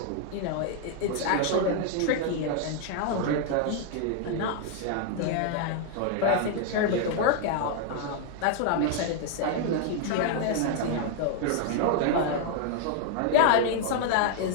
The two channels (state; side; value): different; both; correlation 0.00